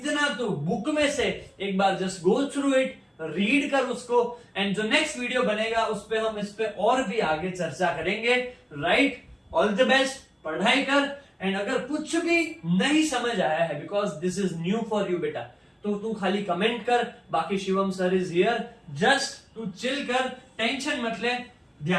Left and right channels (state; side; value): identical; both; correlation 1.00